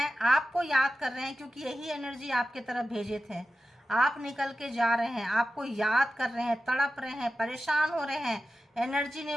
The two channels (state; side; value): normal; both; correlation 0.93